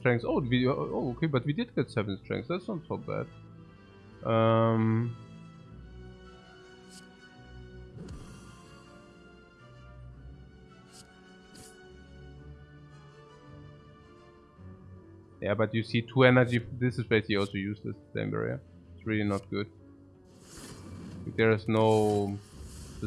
Oh, okay, but we did get 7 strengths. That's not so bad. Yeah, but you see 2 energy. This is basically also useless, flame barrier. It's really not good. There is no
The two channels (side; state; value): both; identical; correlation 1.00